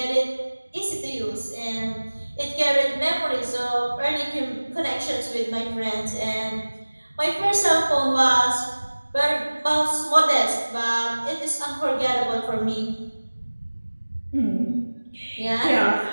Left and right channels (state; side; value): inverted; both; correlation -1.00